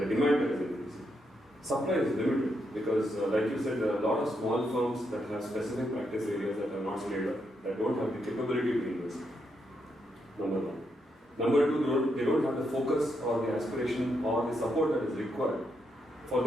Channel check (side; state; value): both; normal; correlation 0.80